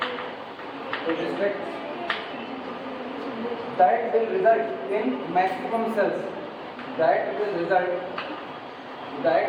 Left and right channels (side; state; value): both; identical; correlation 1.00